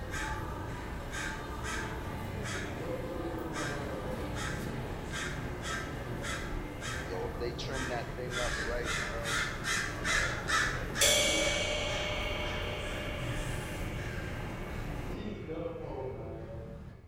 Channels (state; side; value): identical; both; correlation 1.00